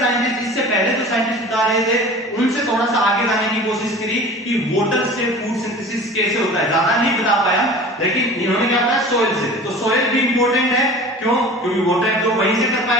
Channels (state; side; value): normal; both; correlation 0.40